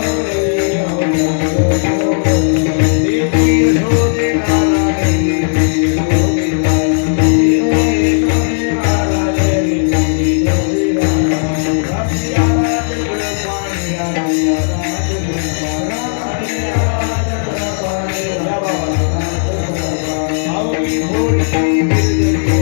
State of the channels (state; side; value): silent; right; digital silence